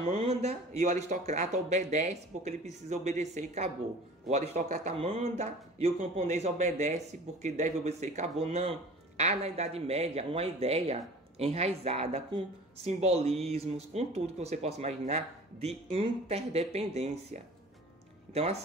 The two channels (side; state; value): both; normal; correlation 0.43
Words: e o aristocrata obedece porque ele precisa obedecer e acabou. O aristocrata manda e o camponês obedece porque deve obedecer e acabou. Não. Há na Idade Média uma ideia enraizada com simbolismos, com tudo que você possa imaginar, de interdependência. Então,